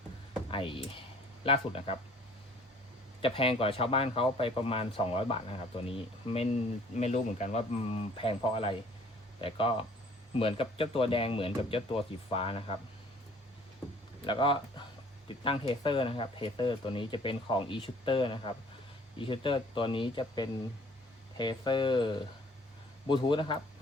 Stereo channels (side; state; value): both; normal; correlation 0.55